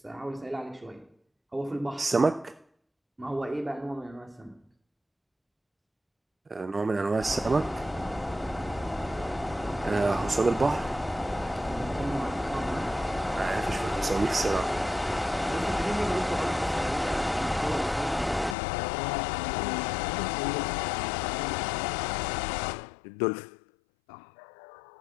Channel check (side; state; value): right; drops out; at 18.6 s